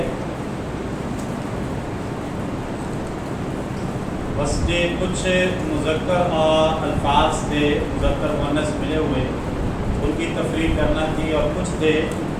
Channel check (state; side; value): identical; both; correlation 1.00